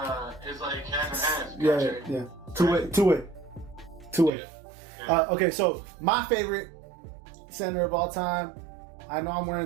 his like half and half. Yeah. Two way. Okay, so my favorite center of all time. I know I'm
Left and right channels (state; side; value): drops out; left; at 4.3 s